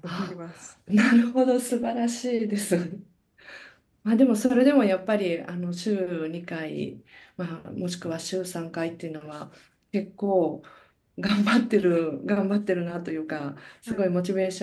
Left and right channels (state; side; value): identical; both; correlation 1.00